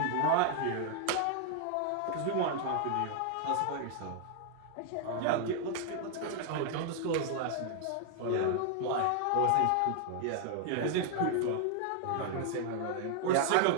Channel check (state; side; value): different; both; correlation 0.00